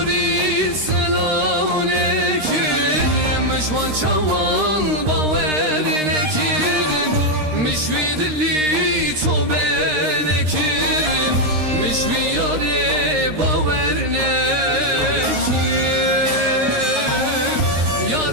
سلامونه کرم مجوان چوان باور نکرم مجوی دلی تو بنکرم مجوی یاره باور نکرم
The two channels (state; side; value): late; left; 13 ms